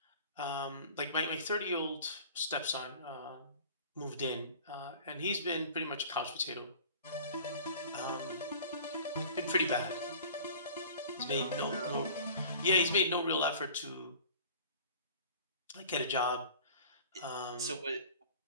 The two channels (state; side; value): inverted; both; correlation -0.43